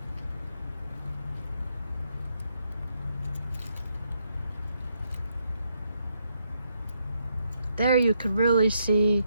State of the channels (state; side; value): inverted; both; correlation -0.78